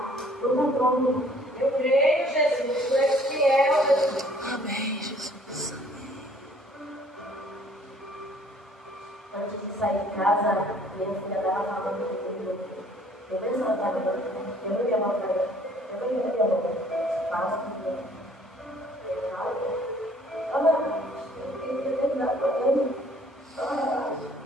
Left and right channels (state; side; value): normal; both; correlation 0.58